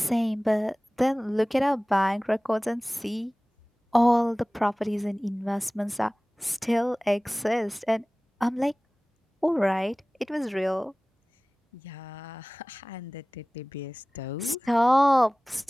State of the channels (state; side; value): normal; both; correlation 0.98